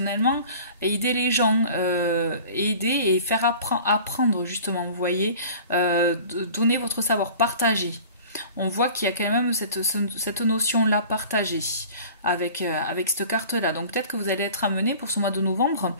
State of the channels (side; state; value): both; inverted; correlation -0.44